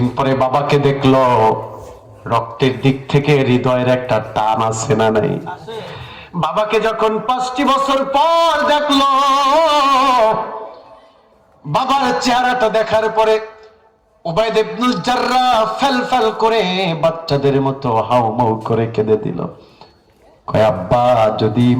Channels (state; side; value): identical; both; correlation 1.00